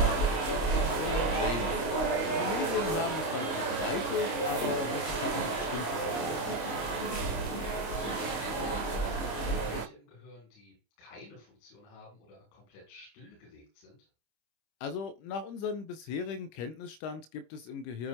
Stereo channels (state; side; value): late; right; 25 ms